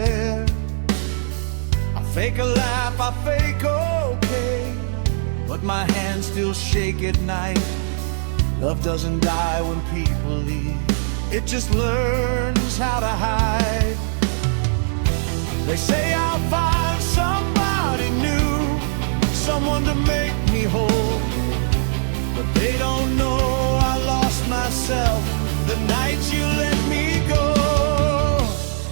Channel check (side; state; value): left; silent; digital silence